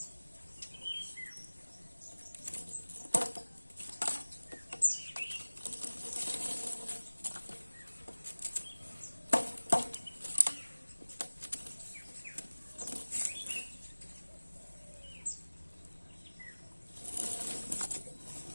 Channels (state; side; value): inverted; both; correlation -1.00